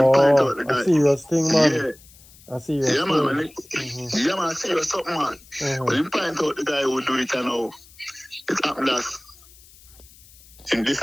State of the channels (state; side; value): noise; left; hiss, 24 dB below the sound